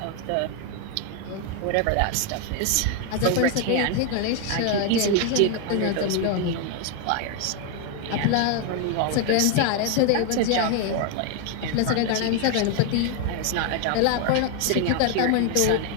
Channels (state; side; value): different; both; correlation 0.01